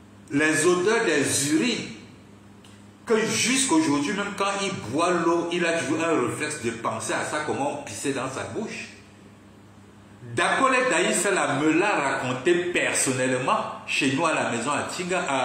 les odeurs des urines, que jusqu'aujourd'hui, même quand il boit l'eau, il a toujours un réflexe de penser à ça, comment on pissait dans sa bouche. Dakole Daïsala me l'a raconté personnellement chez nous à la maison à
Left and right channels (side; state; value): both; identical; correlation 1.00